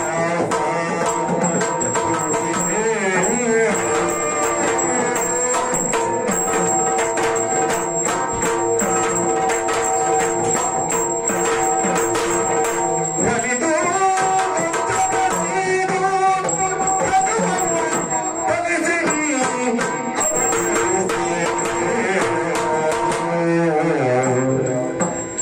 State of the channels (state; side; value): identical; both; correlation 1.00